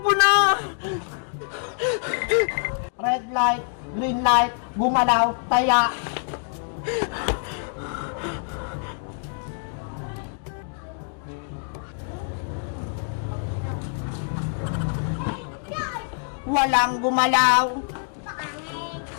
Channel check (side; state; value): right; silent; 56 dB below the other